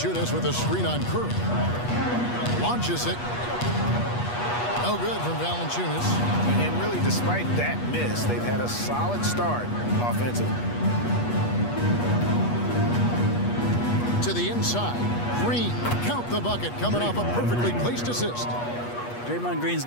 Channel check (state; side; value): late; right; 8.3 ms